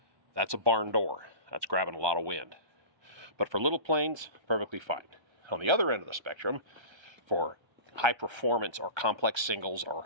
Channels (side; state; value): left; late; 1.3 ms